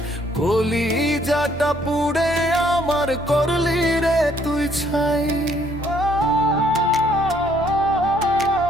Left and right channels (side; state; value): both; normal; correlation 0.66